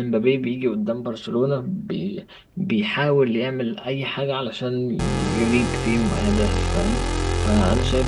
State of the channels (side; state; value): both; identical; correlation 1.00